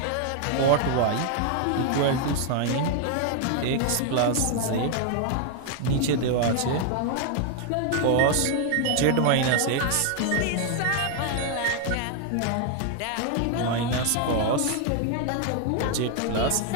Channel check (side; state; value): both; different; correlation 0.00